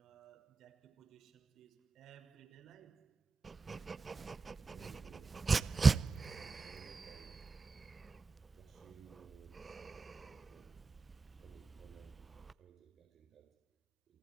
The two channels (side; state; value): left; quieter; 4.3 dB